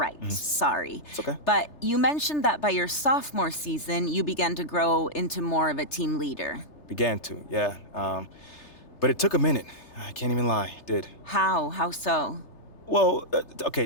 sorry. It's okay. But you mentioned that by your sophomore season, you began to grow into more of a team leader. Began to, yeah. But it took a minute. I can't even lie, it did. How? How so? Well, okay,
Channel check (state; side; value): late; right; 3.3 ms